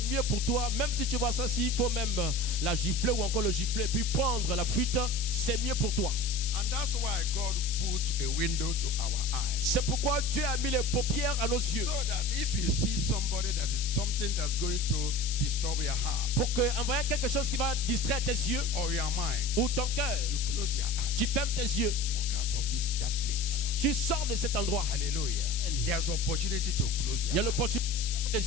mieux pour toi, même si tu vois ça, s'il faut même la gifler ou encore le gifler, puis prendre la fuite, c'est mieux pour toi. And that's why God put a window to our eyes. C'est pourquoi Dieu a mis les paupières à nos yeux. So that if you see somebody that is something that's going to disturb your heart Pour que, en voyant quelque chose qui va distraire tes yeux or your mind, ou ton cœur, you close your eyes. tu fermes tes yeux. Walk out of that place. Tu sors de cet endroit. Hallelujah. There's opportunity to close Il y a your eyes. l'opportunité de fermer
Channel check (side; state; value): left; noise; hiss, 5 dB below the sound